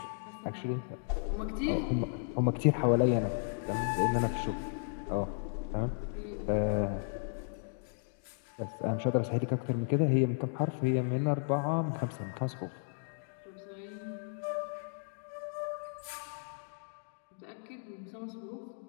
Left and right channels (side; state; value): right; silent; digital silence